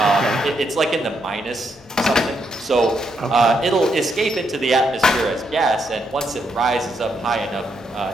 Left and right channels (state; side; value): normal; both; correlation 0.78